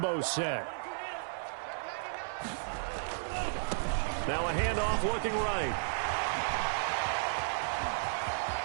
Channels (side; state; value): left; silent; digital silence